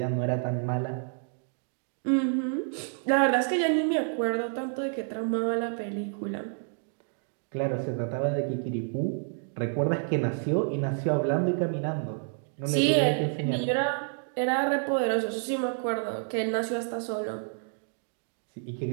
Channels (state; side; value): silent; left; 58 dB below the other